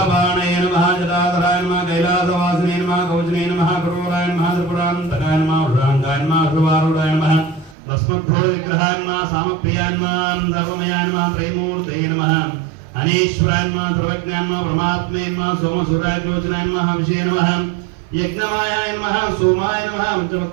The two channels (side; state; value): left; drops out; at 7.8 s